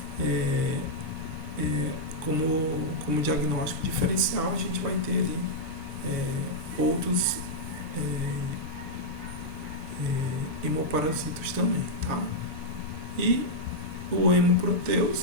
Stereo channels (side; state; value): left; late; 6.7 ms